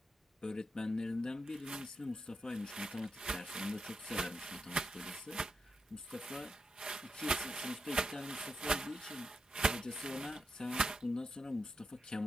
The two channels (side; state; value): both; normal; correlation 0.85